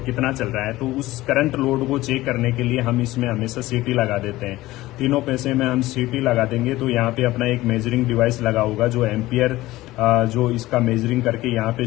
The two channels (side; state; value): right; quieter; 17.5 dB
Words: कितना चल रहा है। तो उस करंट लोड को चेक करने के लिए हम इसमें हमेशा सिटी लगा देते हैं। तीनों पैसे में हम सिटी लगा देंगे तो यहाँ पे अपना एक मेजरिंग डिवाइस लगा होगा जो एम्पियर जो इसका मेजरिंग करके यहाँ पे